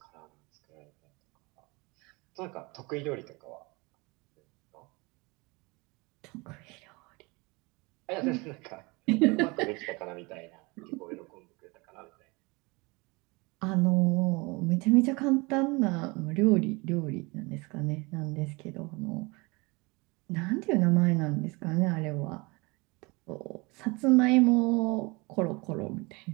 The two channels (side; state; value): left; quieter; 26.3 dB